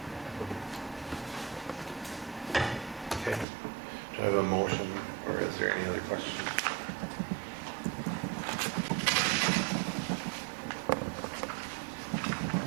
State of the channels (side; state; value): left; drops out; at 3.5 s